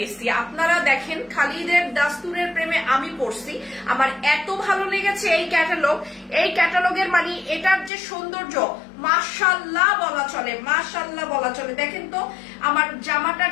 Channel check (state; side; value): drops out; right; at 7.9 s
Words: আপনারা দেখেন, খালিদের দাস্তুরের প্রেমে আমি পড়ছি। আমার এত ভালো লেগেছে এই ক্যাটালগ। এই ক্যাটালগের মানে এটার যে সৌন্দর্য, মাশাআল্লাহ বলা চলে, মাশাআল্লাহ বলা চলে। দেখেন তো আমার জামাটার